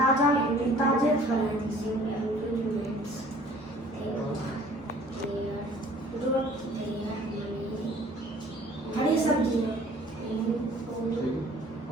फल हरी सब्जी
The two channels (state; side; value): normal; both; correlation 0.52